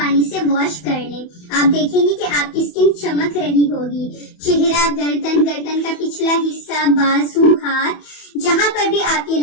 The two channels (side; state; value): right; late; 27 ms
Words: से वॉश कर लें। आप देखेंगे कि आपकी स्किन चमक रही होगी। चेहरा, गर्दन का पिछला हिस्सा, बाजू, हाथ, जहां पर भी आप ये